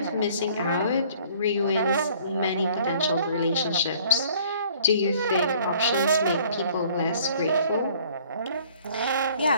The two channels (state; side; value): inverted; both; correlation -0.56